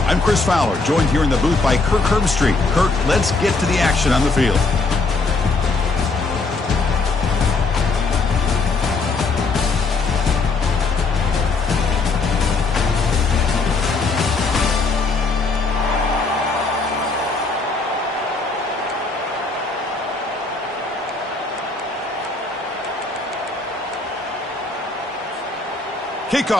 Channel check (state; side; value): quieter; right; 3.8 dB